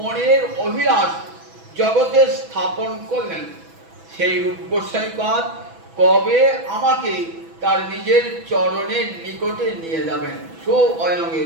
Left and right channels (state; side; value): late; left; 6.1 ms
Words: অভিলাষ জগতে স্থাপন করলেন, সেই রূপ গোস্বামী কবে আমাকে তার নিজের চরণের নিকটে নিয়ে যাবেন। স্বয়ং